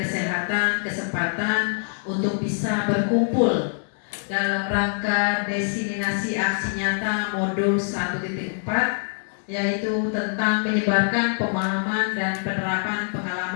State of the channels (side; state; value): right; silent; digital silence